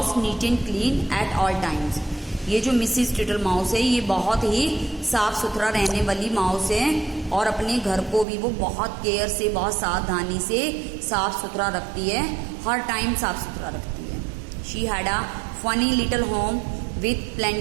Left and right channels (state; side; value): drops out; left; at 8.2 s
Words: neat and clean at all times. ये जो मिसिस टिटल माउस है ये बहुत ही साफ सुथरा रहने वाली माउस है और अपने घर को भी वो बहुत केयर से, बहुत सावधानी से साफ सुथरा रखती है, हर टाइम साफ सुथरा रखती है। She had a funny little home with